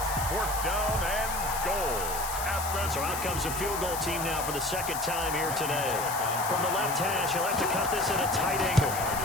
4th down and goal. So out comes a field goal team now for the 2nd time here today. From the left hash, he'll have to cut this at a tight angle.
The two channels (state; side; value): noise; left; hiss, 7 dB below the sound